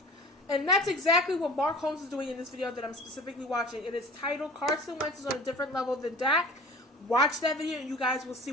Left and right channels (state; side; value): normal; both; correlation 0.42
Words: And that's exactly what Mark Holmes is doing in this video that I'm specifically watching. It is titled Carson Wentz is on a different level than Dak. Watch that video and you guys will see